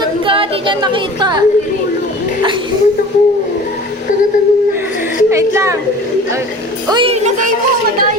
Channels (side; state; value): both; normal; correlation 0.41